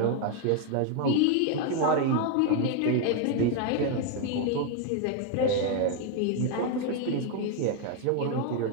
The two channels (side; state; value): both; different; correlation 0.01